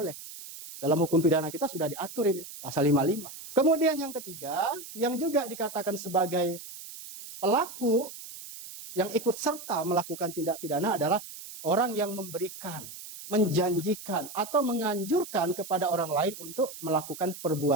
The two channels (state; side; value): noise; right; hiss, 13 dB below the sound